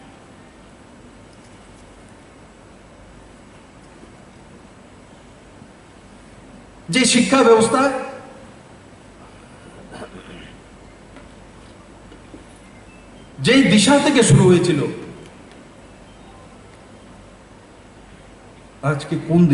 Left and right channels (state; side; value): identical; both; correlation 1.00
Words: যে শিক্ষা ব্যবস্থা যেই দিশা থেকে শুরু হয়েছিল, আজকে কোন